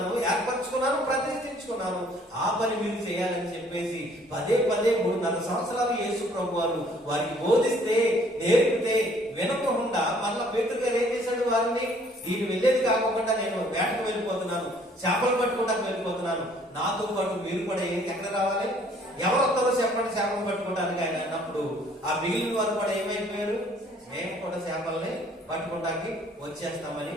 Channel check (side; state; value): both; normal; correlation 0.59